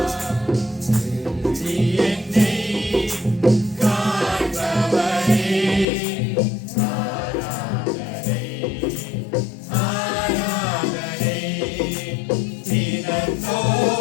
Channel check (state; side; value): drops out; right; at 5.9 s